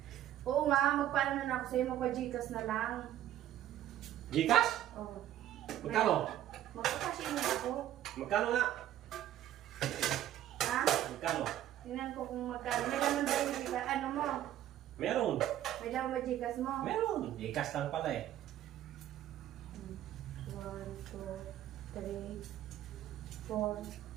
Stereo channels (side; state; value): left; quieter; 12.4 dB